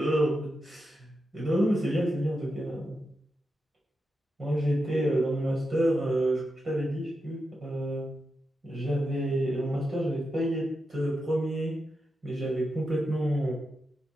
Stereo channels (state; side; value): normal; both; correlation 0.87